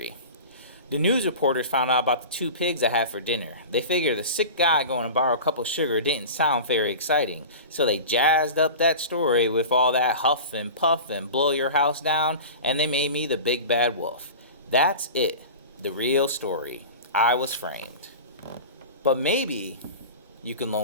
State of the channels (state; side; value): inverted; both; correlation -0.33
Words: The news reporters found out about the two pigs I had for dinner. They figured the sick guy going to borrow a cup of sugar didn't sound very exciting, so they jazzed up that story with all that huff and puff and blow your house down, and they made me the big bad wolf. That's it, the real story. I was framed. But maybe you can